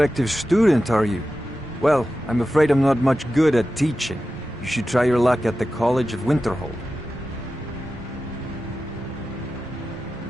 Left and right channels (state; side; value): noise; right; rumble, 19 dB below the sound